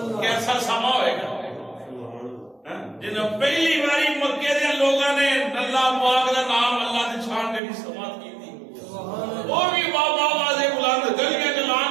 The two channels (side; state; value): left; drops out; at 7.6 s